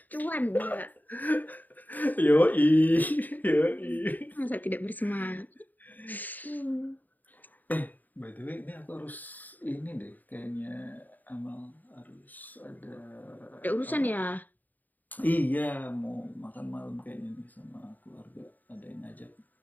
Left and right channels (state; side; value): late; right; 0.084 ms